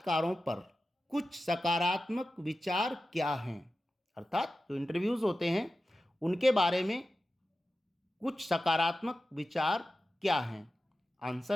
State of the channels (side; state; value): both; normal; correlation 0.93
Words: पर कुछ सकारात्मक विचार क्या हैं, अर्थात जो इंटरव्यूज होते हैं उनके बारे में कुछ सकारात्मक विचार क्या हैं।